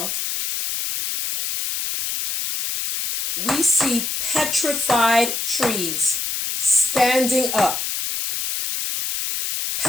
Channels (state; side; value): noise; left; hiss, 3 dB below the sound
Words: we see petrified trees standing up.